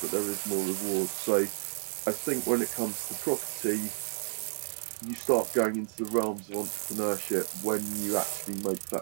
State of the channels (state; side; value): silent; left; 57 dB below the other